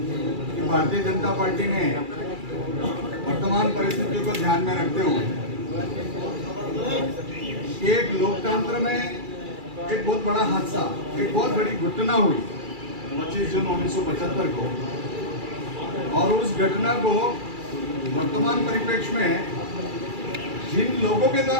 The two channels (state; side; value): late; left; 2.3 ms